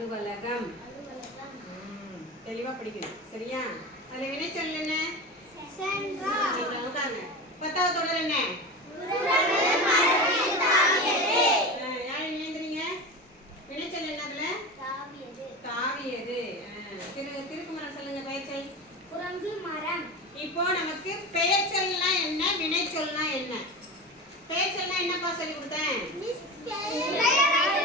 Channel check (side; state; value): both; normal; correlation 0.26